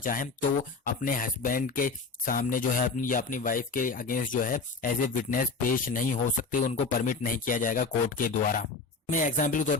तो अपने हस्बैंड के सामने जो है अपनी या अपनी वाइफ के अगेंस्ट जो है एज ए विटनेस पेश नहीं हो सकते, उनको परमिट नहीं किया जाएगा कोर्ट के द्वारा। मैं एग्जाम्पल के तौर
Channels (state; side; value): quieter; right; 4.2 dB